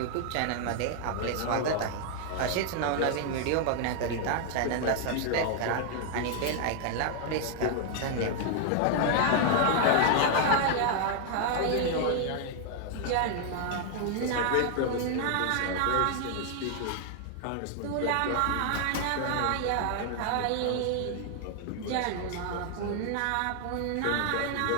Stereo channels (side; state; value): both; different; correlation 0.00